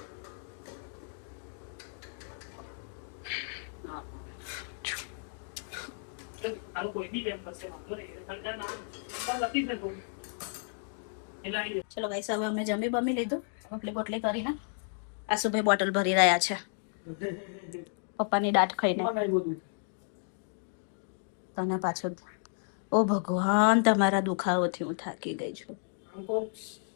ચલો ગાઈસ, હવે અમે જમી બમી લીધું, રોટલી બોટલી કરીને આશુભાઈ બોટલ ભરી રહ્યા છે પપ્પાની દાઢ ખાઈને. તને પાછો ઓ ભગવાન, તમારા દુખાવોથી હું થાકી ગઈ છું.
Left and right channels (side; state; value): right; silent; digital silence